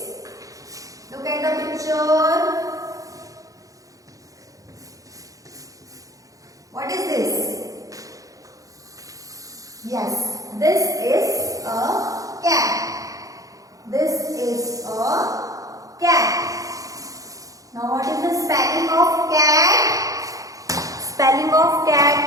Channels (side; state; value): left; late; 0.17 ms